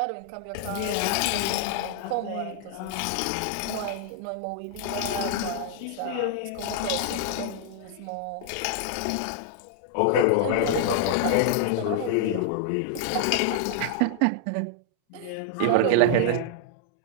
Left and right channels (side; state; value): both; different; correlation -0.01